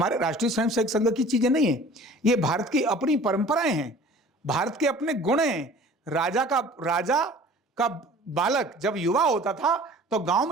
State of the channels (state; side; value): normal; both; correlation 0.46